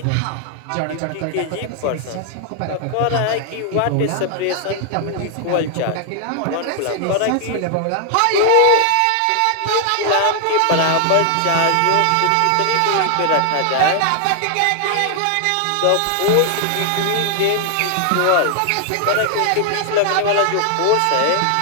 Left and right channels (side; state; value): both; different; correlation 0.00